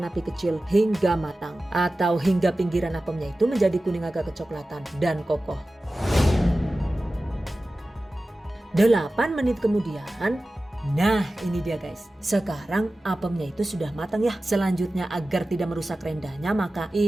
api kecil hingga matang atau hingga pinggiran apemnya itu menjadi kuning agak kecoklatan dan kokoh. 8 menit kemudian, nah ini dia guys. Sekarang apemnya itu sudah matang ya. Selanjutnya agar tidak merusak rendahnya, maka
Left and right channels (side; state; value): both; normal; correlation 0.95